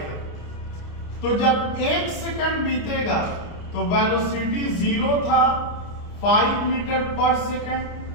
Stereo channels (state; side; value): late; right; 29 ms